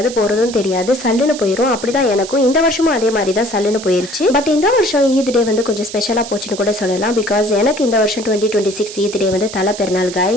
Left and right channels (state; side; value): noise; right; hiss, 12 dB below the sound